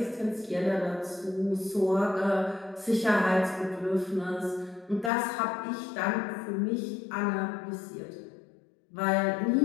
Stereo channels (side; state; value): right; drops out; at 5.1 s